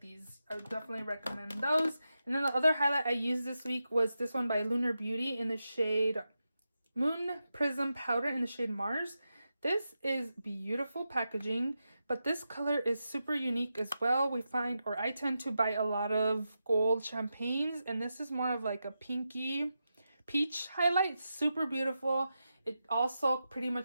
these. I would definitely recommend those. And then the other highlight I used this week was this one by Lunar Beauty in the shade Moon Prism Powder in the shade Mars. This is beautiful packaging, but this color is super unique as well. We find, or I tend to buy a lot of gold champagnes, and this is more of like a pinky peach highlight. Super beautiful. It also pretty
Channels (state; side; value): inverted; both; correlation -0.89